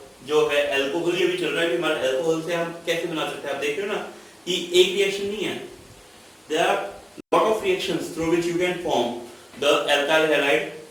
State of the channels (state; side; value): identical; both; correlation 1.00